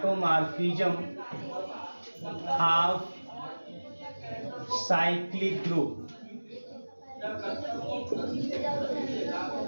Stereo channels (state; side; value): inverted; both; correlation -1.00